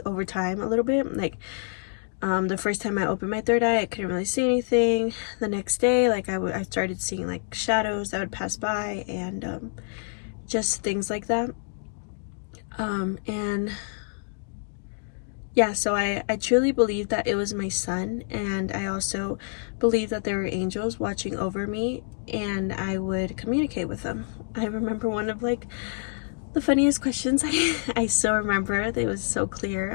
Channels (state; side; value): silent; right; digital silence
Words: over time a little bit. Like the first time I opened my third eye, I couldn't really see anything. The next day, like I started seeing like shadows that would pass by, and just things like that. And yeah, so I truly believe that it was my son, and I also believe that there were angels watching over me, and I would communicate with them. I remember one of like the funniest questions I still remember. It was so